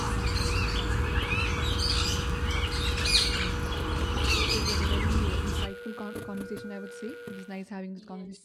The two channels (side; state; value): both; identical; correlation 1.00